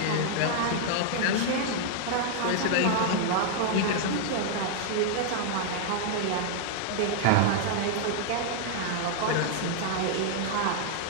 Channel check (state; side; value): different; both; correlation -0.01